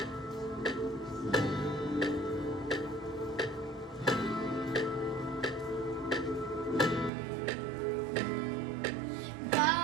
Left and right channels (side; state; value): left; drops out; at 7.1 s